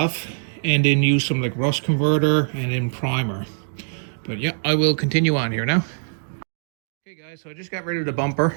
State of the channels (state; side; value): silent; left; digital silence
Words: and then use some like rust converter and then primer. But yeah, I will continue on here now. Okay guys, so I just got rid of the